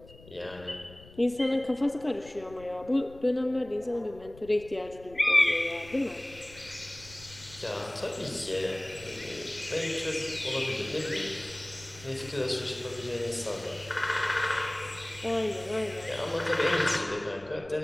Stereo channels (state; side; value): noise; left; rumble, 20 dB below the sound